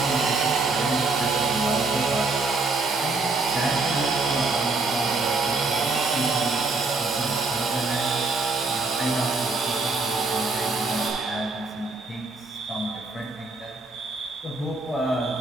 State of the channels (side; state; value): left; quieter; 3.6 dB